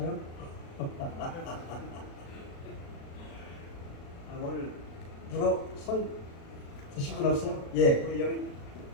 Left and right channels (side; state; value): right; late; 36 ms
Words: 오늘 누가 손 드신 분 없어요? 예, 우리